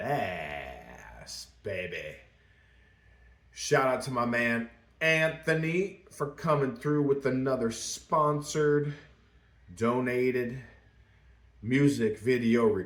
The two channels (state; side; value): identical; both; correlation 1.00